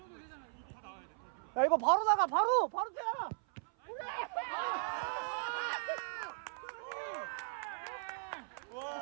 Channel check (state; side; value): silent; left; 53 dB below the other